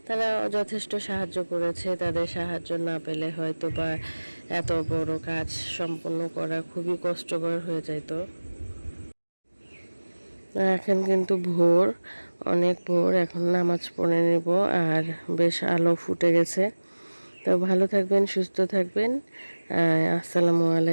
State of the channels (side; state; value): both; inverted; correlation -1.00